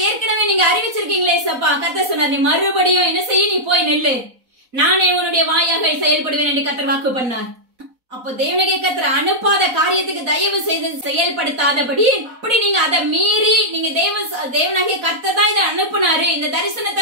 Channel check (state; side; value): late; left; 4.1 ms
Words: ஏற்கனவே நீங்க அறிவிச்சிருக்கீங்களே சப்பா. கர்த்தர் சொன்னார், நீ மறுபடியும் என்ன செய்ய, நீ போய் நெல்லு, நானே உன்னுடைய வாயாக செயல்படுவேன் என்று கர்த்தர் வாக்கு பண்ணார். அப்போ தேவனாகிய கர்த்தர் அனுப்பாத காரியத்துக்கு தயவு செய்து செயல்படுத்தாதபடி, அப்படி நீங்க அதை மீறி நீங்க தேவனாகிய கர்த்தர் தான் இதை அனுப்புனாரு, இந்த தரிசனத்தை